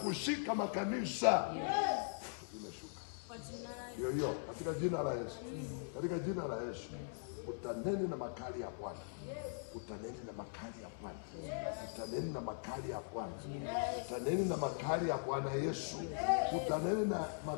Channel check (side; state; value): right; silent; 51 dB below the other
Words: makanisa. Imeshuka. Hiyo katika jina la Yesu. Katika jina la Yesu. Utaneni na makali ya Bwana. Utaneni na makali ya Bwana. Utaneni na makali ya Bwana. Utaneni na makali ya Bwana Yesu. Utaneni na